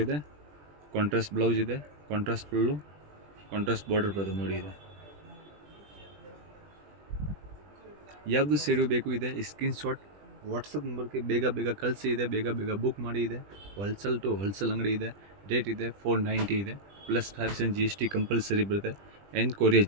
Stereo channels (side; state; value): left; late; 20 ms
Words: ಇದೆ. ಕಾಂಟ್ರಾಸ್ಟ್ ಬ್ಲೌಸ್ ಇದೆ, ಕಾಂಟ್ರಾಸ್ಟ್ ಫುಲ್ಲು ಕಾಂಟ್ರಾಸ್ಟ್ ಬಾರ್ಡರ್ ಬರುತ್ತೆ ನೋಡಿ ಇದೆ. ಯಾವುದು ಸೀರೆ ಬೇಕು ಇದೆ ಸ್ಕ್ರೀನ್ ಶಾಟ್ ವಾಟ್ಸಪ್ ನಂಬರ್ಗೆ ಬೇಗ ಬೇಗ ಕಳಿಸಿ ಇದೆ, ಬೇಗ ಬೇಗ ಬುಕ್ ಮಾಡಿ ಇದೆ. ಹೋಲ್ಸೇಲ್ ಟು ಹೋಲ್ಸೇಲ್ ಅಂಗಡಿ ಇದೆ. ರೇಟ್ ಇದೆ 490 ಇದೆ, ಪ್ಲಸ್ 5% GST ಕಂಪಲ್ಸರಿ ಬರುತ್ತೆ, and courier